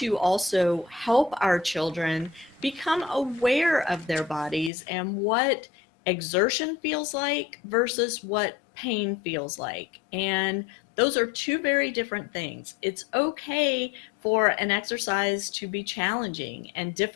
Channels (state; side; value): drops out; right; at 4.7 s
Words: also help our children become aware of their bodies and what exertion feels like versus what pain feels like. And those are two very different things. It's okay for an exercise to be challenging and